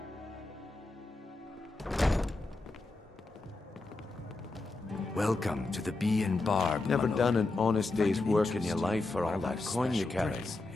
Welcome to the Bee and Barb. Never Dimhollow. done an honest day's Find it work in your interesting. life for all What that about coin you special carry. drinks?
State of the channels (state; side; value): quieter; right; 3.2 dB